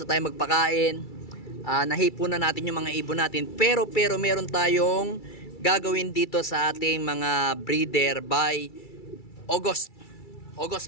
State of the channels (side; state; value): right; late; 2.3 ms